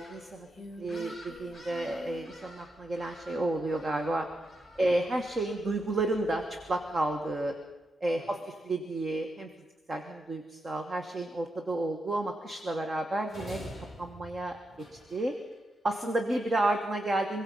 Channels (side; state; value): both; normal; correlation 0.84